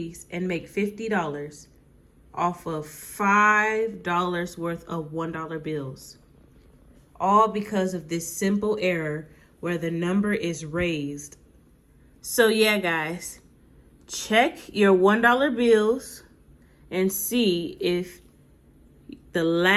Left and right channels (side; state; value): both; identical; correlation 1.00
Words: and make $50 off of $5 worth of $1 bills. All because of this simple error where the number is raised. So yeah, guys, check your $1 bills and see if the